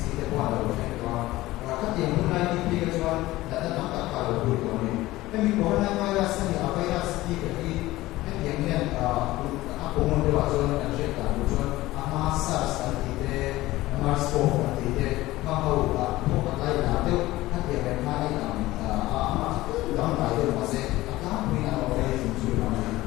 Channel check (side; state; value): right; quieter; 17.7 dB